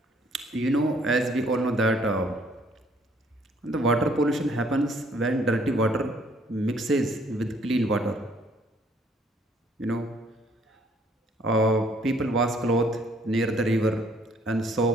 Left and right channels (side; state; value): both; normal; correlation 0.63